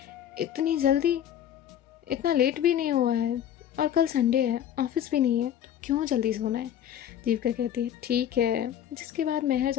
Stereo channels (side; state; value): right; quieter; 10.3 dB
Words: इतनी जल्दी, इतना लेट भी नहीं हुआ है और कल संडे है, ऑफिस भी नहीं है, तो क्यों जल्दी सोना है। जीविका कहती है ठीक है। जिसके बाद मेहर